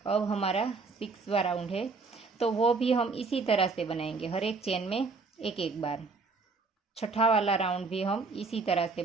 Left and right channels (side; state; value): left; quieter; 4.3 dB